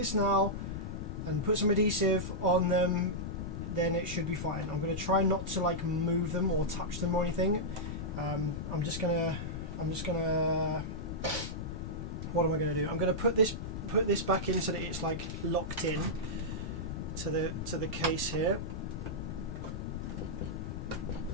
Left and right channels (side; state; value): left; noise; rumble, 6 dB below the sound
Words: now and put some adhesive on them, then it should be fine. I'm going to try not to like move them or touch them or anything. I'm just gonna what am I going to do? I'm going to put this back in so that it's like locked in to the case here.